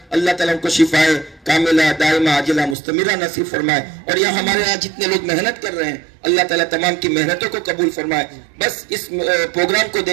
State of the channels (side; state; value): left; drops out; at 2.8 s